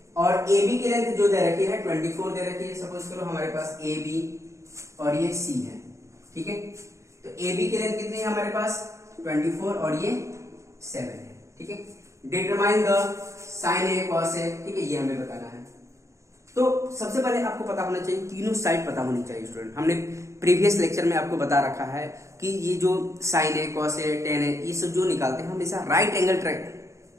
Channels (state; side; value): late; left; 0.14 ms